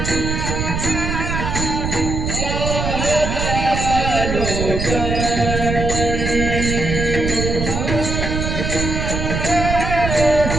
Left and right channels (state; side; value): noise; right; rumble, 2 dB below the sound